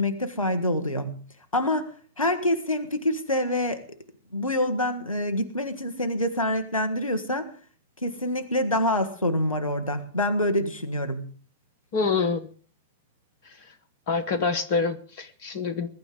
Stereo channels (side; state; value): both; inverted; correlation -0.36